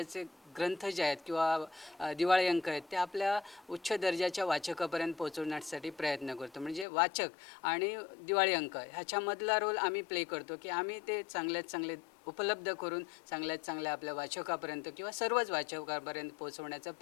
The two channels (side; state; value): right; drops out; at 6.9 s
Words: ग्रंथ जे आहेत किंवा दिवाळी अंक आहेत ते आपल्या उच्च दर्जाच्या वाचकापर्यंत पोहोचवण्यासाठी प्रयत्न करतो. म्हणजे वाचक आणि दिवाळी अंक ह्याच्यामधला रोल आम्ही प्ले करतो की आम्ही ते चांगल्यात चांगले उपलब्ध करून चांगल्यात चांगल्या आपल्या वाचकापर्यंत किंवा सर्वच वाचकापर्यंत पोहोचवण्याचा